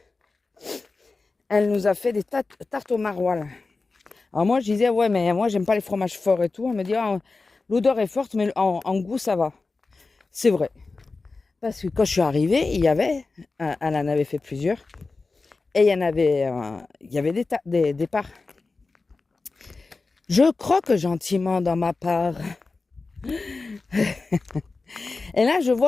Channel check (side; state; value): right; quieter; 3.8 dB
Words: elle nous a fait des tartes au maroilles. Alors moi, je disais, ouais, mais moi, j'aime pas les fromages forts et tout. Elle me dit, l'odeur est forte, mais en goût, ça va. C'est vrai. Parce que quand je suis arrivée, il y avait, elle en avait fait plusieurs, et il y avait des parts. Je croque gentiment dans ma part. Et là, je